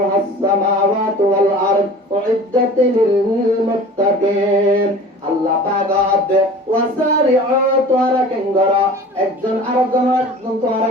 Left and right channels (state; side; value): normal; both; correlation 0.42